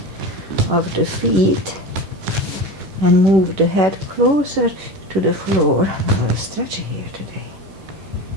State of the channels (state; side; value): late; left; 11 ms